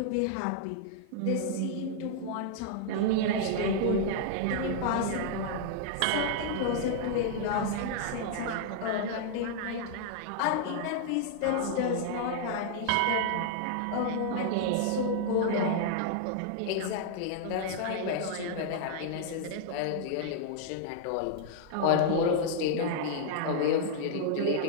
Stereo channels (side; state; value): both; different; correlation -0.01